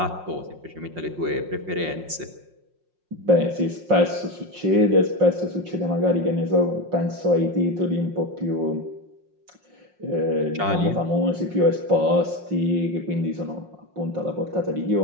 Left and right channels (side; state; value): left; late; 5.6 ms